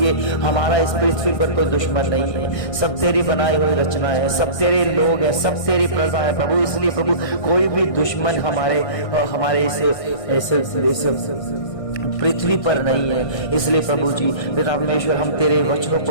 हमारा इस पृथ्वी पर कोई दुश्मन नहीं है, सब तेरी बनाई हुई रचना है, सब तेरे लोग हैं, सब तेरी प्रजा है प्रभु। इसलिए प्रभु कोई भी दुश्मन हमारे इस पृथ्वी पर नहीं है। इसलिए प्रभु जी परमेश्वर, हम तेरे वचनों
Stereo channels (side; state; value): right; late; 1.6 ms